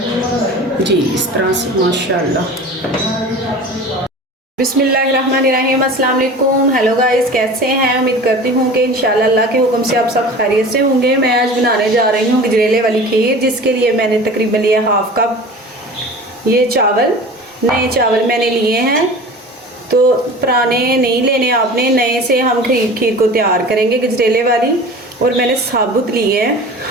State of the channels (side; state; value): both; normal; correlation 0.38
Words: जी इस तरह से माशाल्लाह। बिस्मिल्लाहिर्रहमानिर्रहीम, अस्सलाम वालेकुम। हेलो गाइस, कैसे हैं? उम्मीद करती हूँ कि इंशाल्लाह अल्लाह के हुक्म से आप सब खैरियत से होंगे। मैं आज बनाने जा रही हूँ गजरेले वाली खीर, जिसके लिए मैंने तकरीबन लिया हाफ कप ये चावल। नए चावल मैंने लिए हैं, तो पुराने नहीं लेने आपने, नए से हम खीर को तैयार करेंगे गजरेले वाली। और मैंने साबुत लिए हैं,